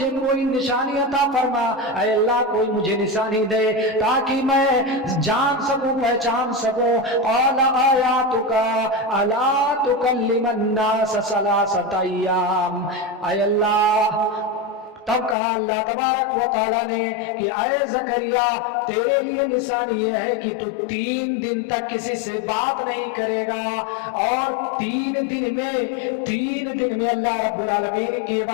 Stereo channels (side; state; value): right; drops out; at 15.4 s